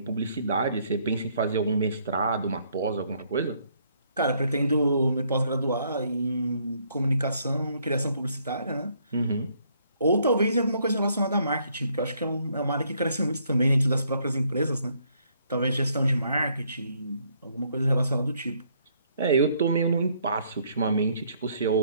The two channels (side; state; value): both; inverted; correlation -0.68